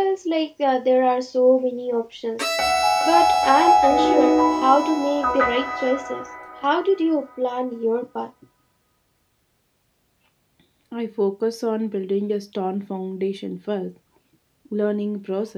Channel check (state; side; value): identical; both; correlation 1.00